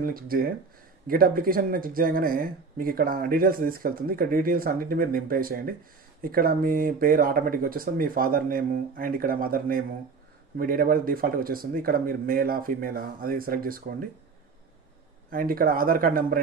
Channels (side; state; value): left; quieter; 4.8 dB